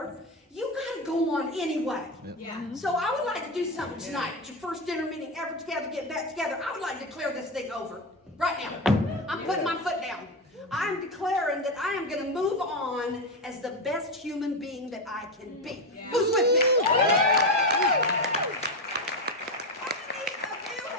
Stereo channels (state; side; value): normal; both; correlation 0.13